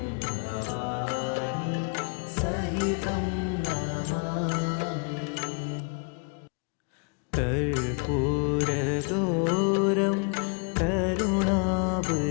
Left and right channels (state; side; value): quieter; right; 36.0 dB